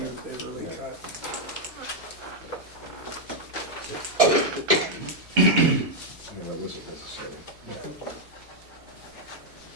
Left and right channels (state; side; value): normal; both; correlation -0.01